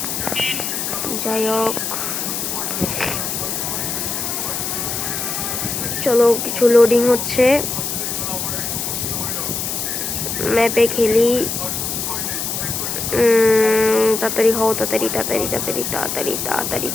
যাই হোক, চলো কিছু লোডিং হচ্ছে, ম্যাপে খেলি। তাড়াতাড়ি হও, তাড়াতাড়ি তাড়াতাড়ি তাড়াতাড়ি তাড়াতাড়ি তাড়াতাড়ি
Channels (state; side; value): noise; left; hiss, 3 dB below the sound